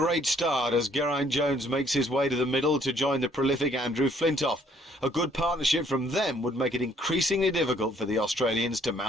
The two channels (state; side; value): normal; both; correlation 0.64